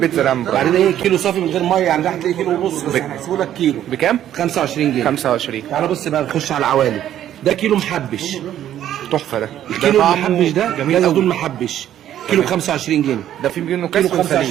العام. وبعدين ايه؟ كيلو صافي من غير ميه، يعني هتلاقي كيلو ونص بس هنحسبه لك كيلو. بكام؟ 25 جنيه. 25. تعالى بص بقى نخش على العوالي. ده كيلو محبش. تحفه ده. الكيلو طعمه المحبش ده جميل زيتون قوي. محبش كيلو ب 25 جنيه. ده في منه كيلو كاس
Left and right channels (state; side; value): quieter; left; 11.4 dB